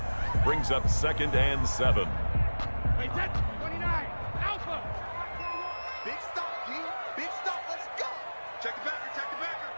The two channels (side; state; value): both; inverted; correlation -1.00